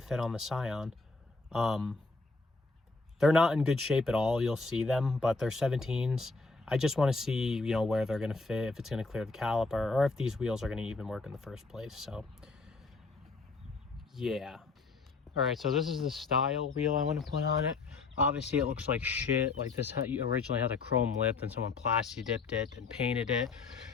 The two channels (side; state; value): right; quieter; 3.9 dB